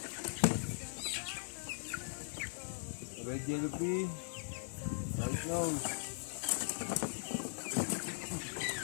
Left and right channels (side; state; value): right; silent; 51 dB below the other